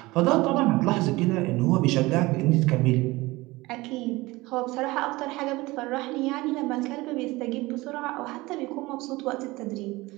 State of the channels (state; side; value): quieter; left; 21.0 dB